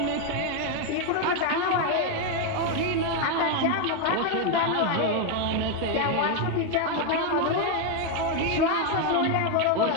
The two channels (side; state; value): both; different; correlation 0.01